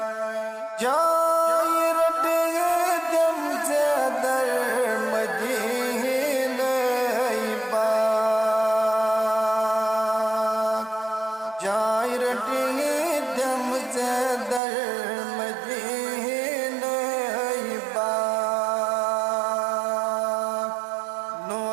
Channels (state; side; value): drops out; left; at 14.6 s